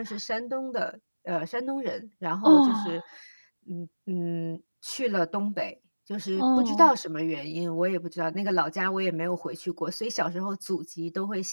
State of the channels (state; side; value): inverted; both; correlation -1.00